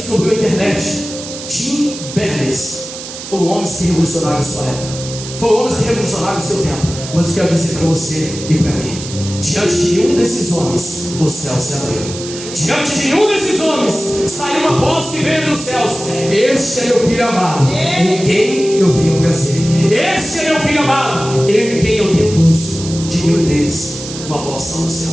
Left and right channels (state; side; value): noise; right; hiss, 11 dB below the sound